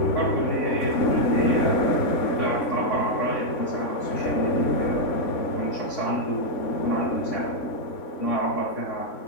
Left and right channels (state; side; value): late; right; 3.6 ms